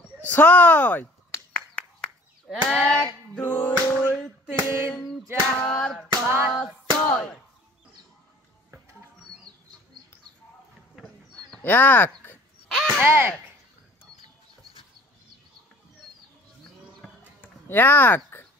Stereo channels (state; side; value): normal; both; correlation 0.50